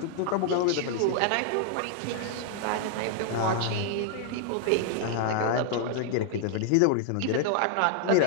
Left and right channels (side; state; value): both; different; correlation -0.01